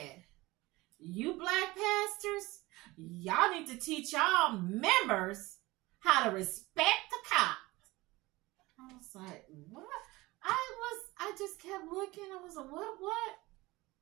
"You black pastors, y'all need to teach y'all members how to respect the cop." I was like, what? I just kept looking. I was like, what?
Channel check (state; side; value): quieter; left; 20.7 dB